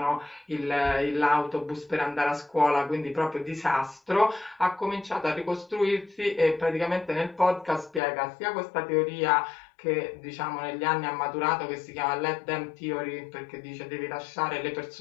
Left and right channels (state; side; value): drops out; right; at 8.0 s